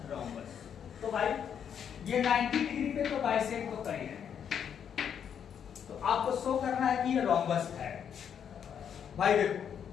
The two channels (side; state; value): right; quieter; 8.2 dB